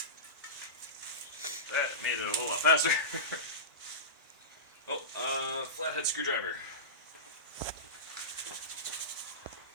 That made it a whole lot faster. Oh, flathead screwdriver.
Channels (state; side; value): normal; both; correlation -0.19